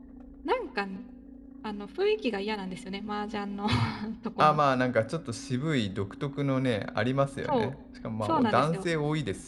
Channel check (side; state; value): both; identical; correlation 1.00